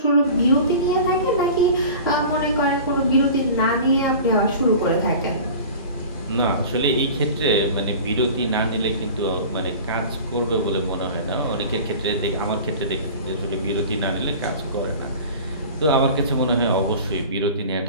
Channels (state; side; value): inverted; both; correlation -0.38